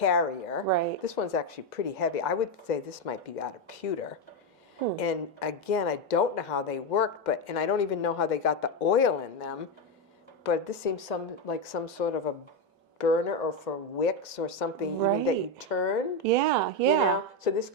Right. This one's actually pretty heavy. I would say this might be out of pewter. And again, I don't know how they work, and I don't even know how they got the oil in them. But this seems like some sort of a burner or for wicks or something even that you turn. Yeah, yeah. So this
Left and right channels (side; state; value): both; normal; correlation 0.08